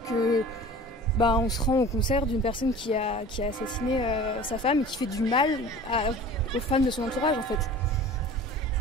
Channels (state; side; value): normal; both; correlation 0.41